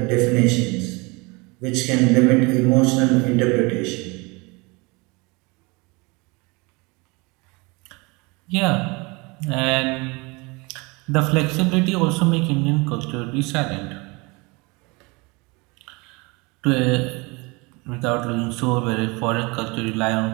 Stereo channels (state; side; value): quieter; left; 26.7 dB